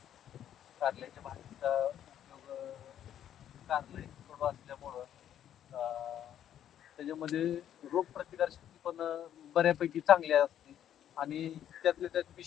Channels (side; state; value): right; quieter; 10.5 dB